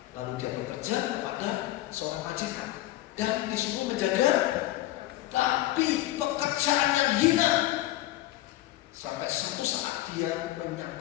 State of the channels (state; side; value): quieter; right; 16.0 dB